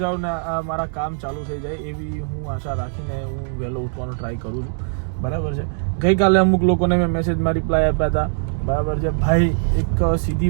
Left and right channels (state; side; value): silent; left; digital silence